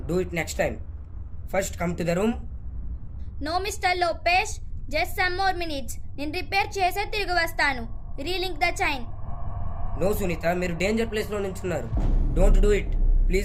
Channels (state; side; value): identical; both; correlation 1.00